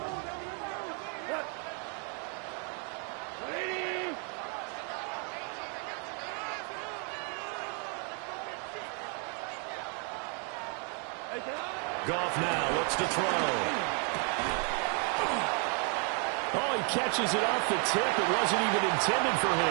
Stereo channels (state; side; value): quieter; left; 39.2 dB